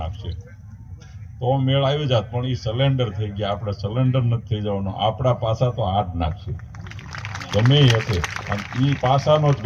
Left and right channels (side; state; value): both; identical; correlation 1.00